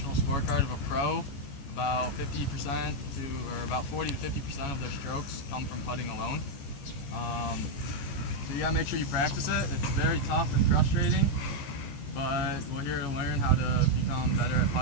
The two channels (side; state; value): right; late; 14 ms